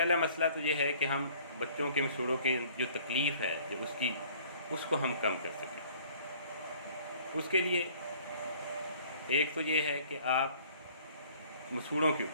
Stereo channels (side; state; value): both; inverted; correlation -0.54